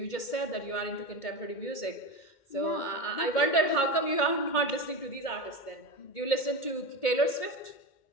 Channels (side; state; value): right; late; 2.1 ms